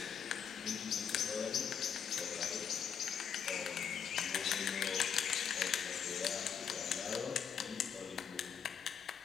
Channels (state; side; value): quieter; right; 7.7 dB